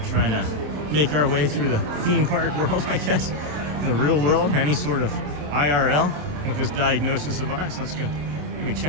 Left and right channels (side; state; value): left; late; 27 ms